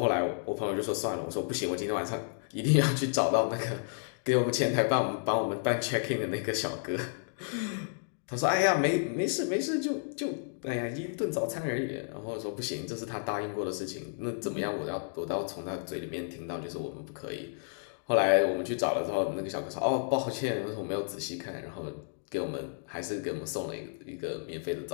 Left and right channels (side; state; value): right; silent; digital silence